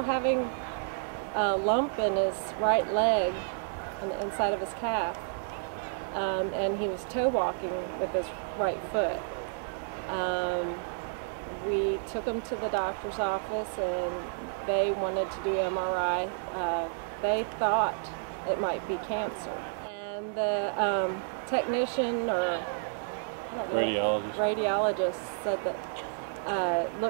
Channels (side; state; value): left; silent; digital silence